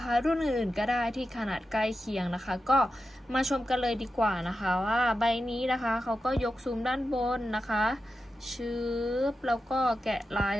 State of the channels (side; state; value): both; normal; correlation 0.90